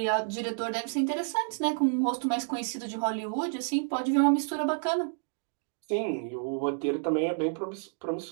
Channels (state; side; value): silent; left; digital silence